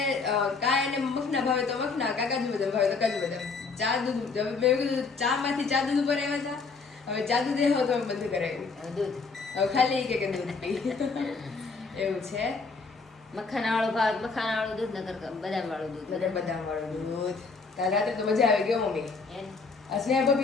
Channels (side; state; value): right; quieter; 4.5 dB